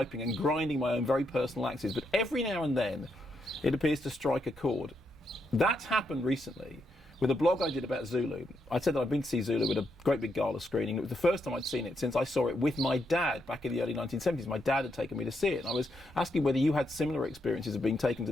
and grinding my own very personal axes, but every now and then it appears to strike a chord. That's happened recently with a blog I did about Zulu. I said that I'd been to see Zulu at a great big gala screening. It was the first time I'd seen it since I saw it with my dad back in the early 1970s. My dad had taken me to see it, and I was asking whether you had similar experiences of being taken to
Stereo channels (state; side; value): normal; both; correlation 0.80